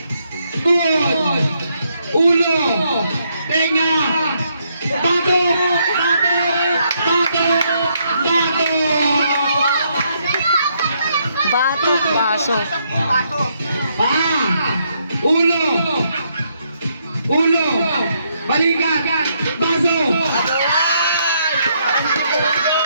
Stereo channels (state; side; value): inverted; both; correlation -0.75